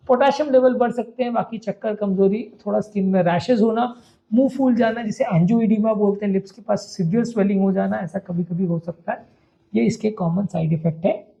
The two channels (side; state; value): both; identical; correlation 1.00